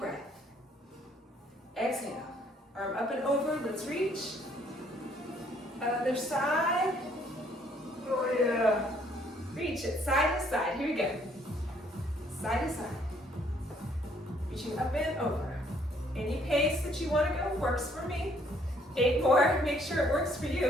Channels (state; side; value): normal; both; correlation 0.64